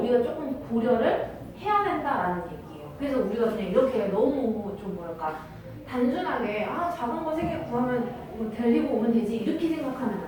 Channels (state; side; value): identical; both; correlation 1.00